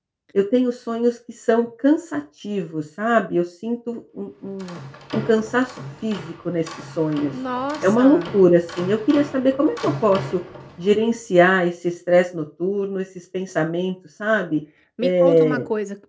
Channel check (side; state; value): both; identical; correlation 1.00